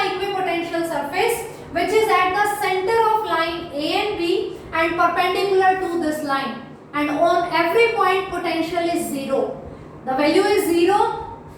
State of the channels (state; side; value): identical; both; correlation 1.00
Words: equipotential surface which is at the center of line A and B and perpendicular to this line, and on every point potential is 0. The value is 0.